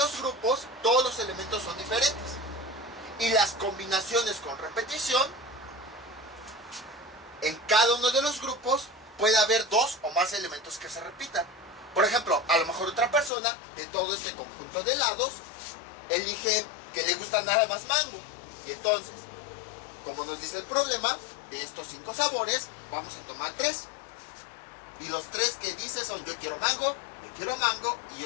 grupos, todos los elementos son diferentes. Y las combinaciones con repetición, en cada uno de los grupos, puede haber 2 o más elementos que se repitan. Por ejemplo, a lo mejor otra persona, de todo este conjunto de helados, elige que le gusta nada más mango. Y entonces, como nos dice el problema, de estos 5 sabores, vamos a tomar 3. Y los 3 que dice son yo quiero mango y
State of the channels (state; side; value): drops out; right; at 13.3 s